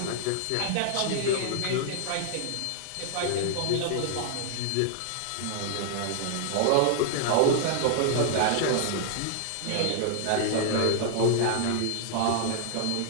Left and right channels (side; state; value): both; different; correlation 0.00